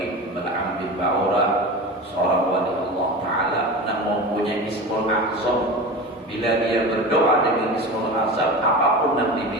Bal'am bin Ba'urah, seorang wali Allah Ta'ala yang mempunyai Ismul Azam. Bila dia berdoa dengan Ismul Azam, apapun yang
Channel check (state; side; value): normal; both; correlation 0.30